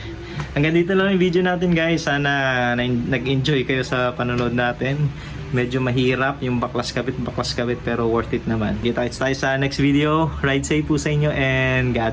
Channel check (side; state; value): both; identical; correlation 1.00